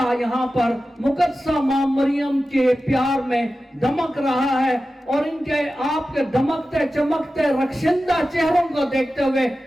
یہاں پر مقدسہ ماں مریم کے پیار میں دمک رہا ہے، اور ان کے آپ کے دمکتے چمکتے رخشندہ چہروں کو دیکھتے ہوئے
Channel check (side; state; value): both; normal; correlation 0.94